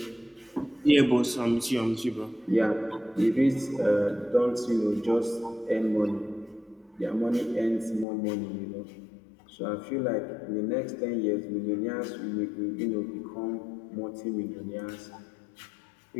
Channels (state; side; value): drops out; right; at 8.1 s